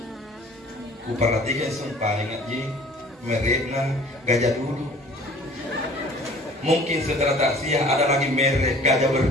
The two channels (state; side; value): normal; both; correlation 0.48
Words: Ku perhatikan sumpah ngaji mereknya gajah dulu. Mungkin setelah taksiah ada lagi merek gajah